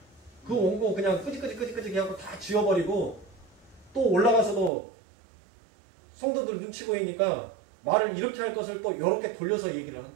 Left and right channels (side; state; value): left; drops out; at 4.7 s